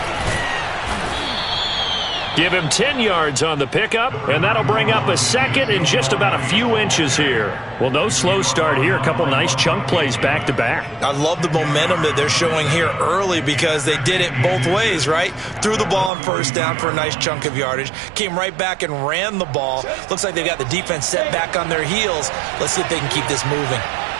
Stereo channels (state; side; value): drops out; left; at 16.1 s